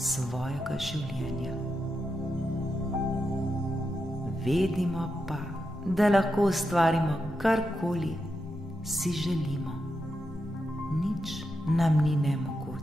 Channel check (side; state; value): both; normal; correlation 0.86